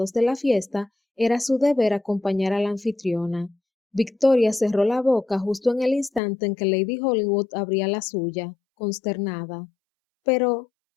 de la fiesta, era su deber acompañar a la anfitriona. Victoria cerró la boca justo en el instante en que Lady Hollywood abría la suya, consternada. Pero,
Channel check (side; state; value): right; drops out; at 6.2 s